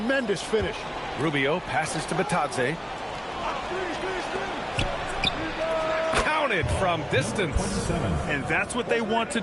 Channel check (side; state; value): both; identical; correlation 1.00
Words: finish. Rubio passes to Bitadze. Counted from distance. And that's what they want to